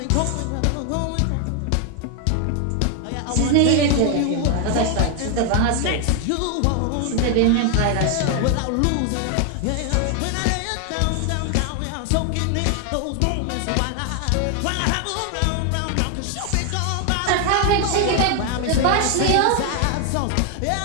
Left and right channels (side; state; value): both; different; correlation 0.00